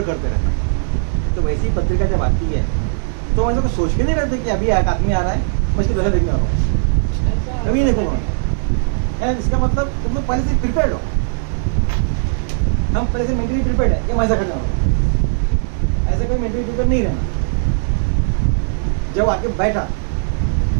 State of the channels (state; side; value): silent; left; 65 dB below the other